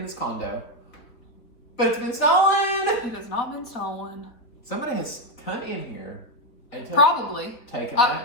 this condo, but it's been stolen. It has not been stolen. Somebody has come in here and taken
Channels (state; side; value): late; right; 4.1 ms